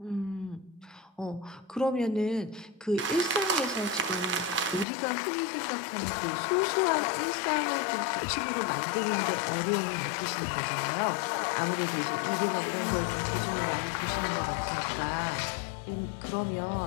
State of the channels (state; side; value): drops out; right; at 4.9 s